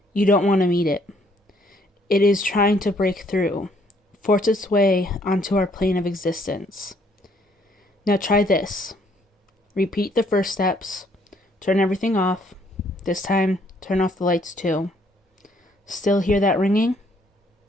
you don't want to meet it. It is trying to break through, force its way onto our plane of existence. Now try this. Repeat the first steps. Turn everything off. This time, turn off the lights too. Still hear that ringing?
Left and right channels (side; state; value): both; normal; correlation 0.66